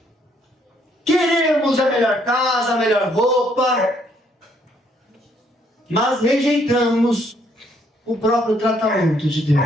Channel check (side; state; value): both; normal; correlation 0.68